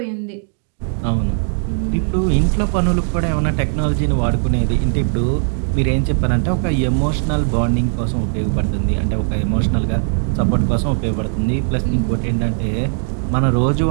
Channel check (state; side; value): silent; left; digital silence